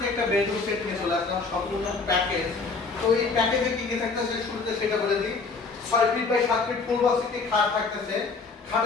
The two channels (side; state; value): right; quieter; 4.3 dB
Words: একটা বেডরুম সেট নিয়ে চলে আসলাম, সম্পূর্ণ প্যাকেজ। তো এই প্যাকেজে কি কি থাকতেছে শুরুতে সেটা বলে দিই। 6 feet by 7 feet full box একটি খাট থাকতেছে,